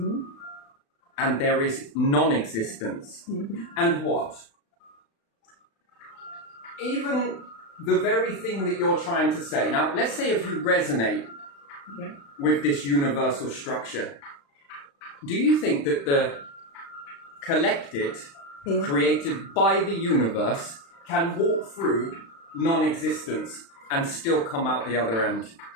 there is non-existence. And what? Even the very thing that you're trying to say. Now, let's say if you resonate with this universal structure, do you think that the collected, created by the universe, can walk through non-existence and still come out the other end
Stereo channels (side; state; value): right; late; 36 ms